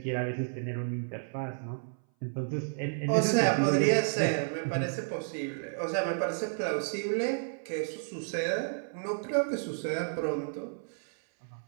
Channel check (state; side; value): silent; left; 57 dB below the other